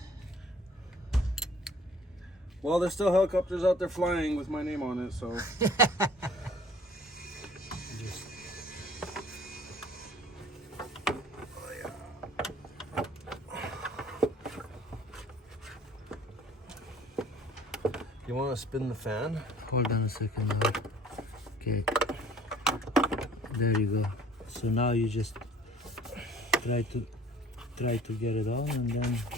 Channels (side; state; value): both; normal; correlation 0.52